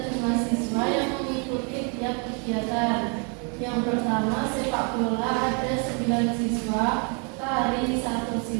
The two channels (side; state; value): left; quieter; 36.6 dB